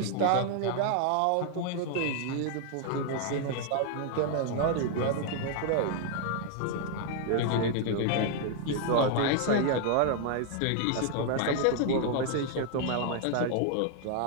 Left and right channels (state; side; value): different; both; correlation 0.00